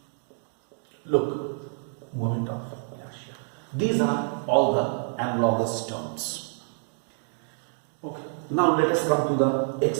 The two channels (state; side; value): silent; left; 60 dB below the other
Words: Look, moment of inertia. These are all the analogous terms. Okay. Now let us come to the